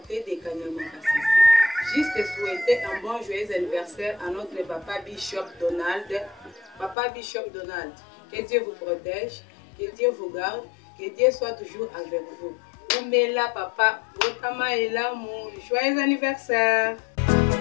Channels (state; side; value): drops out; right; at 7.0 s